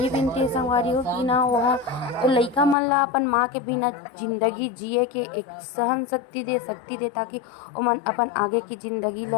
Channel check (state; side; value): drops out; right; at 2.8 s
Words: विनती है संगवारी हो कि ना वह वो लइका मन ला अपन माँ के बिना जिंदगी जिए के एक सहन शक्ति दे ताकि वो मन अपन आगे की जिंदगी